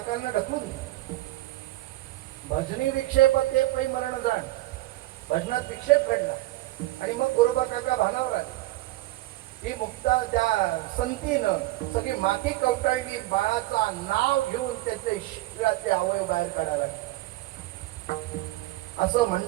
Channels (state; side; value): quieter; left; 18.1 dB